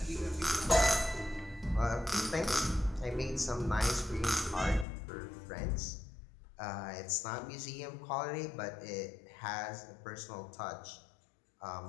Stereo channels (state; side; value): drops out; right; at 4.9 s